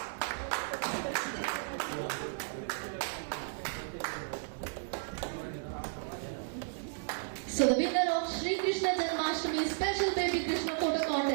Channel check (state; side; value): silent; left; digital silence